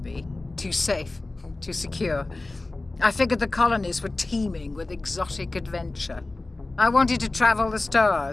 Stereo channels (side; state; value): right; quieter; 3.1 dB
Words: me. Too safe, too secure. I figured the colonies were teeming with exotic adventure. I wanted to travel the